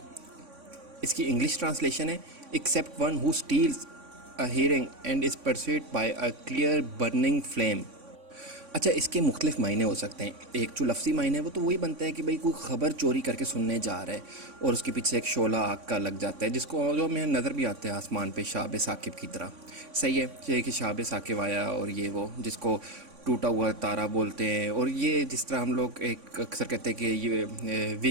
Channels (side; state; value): left; late; 3.5 ms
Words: اس کی انگلش ٹرانسلیشن ہے accept one who steels a hearing and is persuade by a clear burning flame. اچھا، اس کے مختلف معنی ہو سکتے ہیں. ایک جو لفظی معنی ہے وہ تو وہی بنتا ہے کہ بھئی کوئی خبر چوری کر کے سننے جا رہا ہے اور اس کے پیچھے ایک شعلہ آگ کا لگ جاتا ہے، جس کو جو ہمیں نظر بھی آتا ہے آسمان پہ شہاب ثاقب کی طرح. صحیح ہے، یہ کہ شہاب ثاقب آیا اور یہ وہ جس کو ٹوٹا ہوا تارا بولتے ہیں. اور یہ جس طرح ہم لوگ ایک اکثر کہتے ہیں کہ یہ